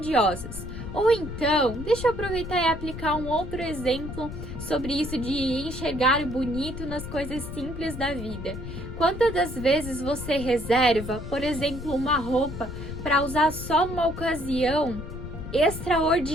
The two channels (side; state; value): left; noise; rumble, 9 dB below the sound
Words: Ou então, deixa eu aproveitar e aplicar um outro exemplo sobre isso de enxergar o bonito nas coisas simples da vida. Quantas das vezes você reserva, por exemplo, uma roupa para usar só numa ocasião